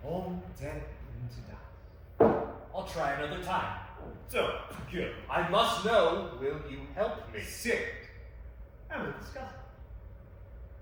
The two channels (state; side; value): identical; both; correlation 1.00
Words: All dead into dust. I'll try another time. So, good. I must know, will you help me? Sit. And we'll discuss